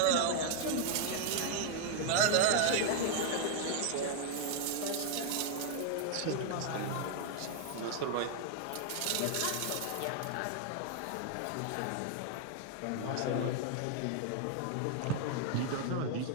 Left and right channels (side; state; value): both; different; correlation 0.00